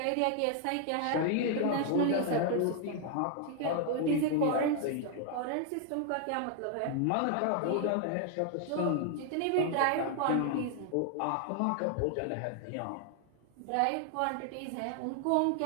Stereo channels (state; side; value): different; both; correlation 0.00